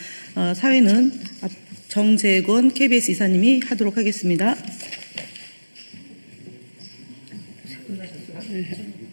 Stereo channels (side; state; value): both; inverted; correlation -1.00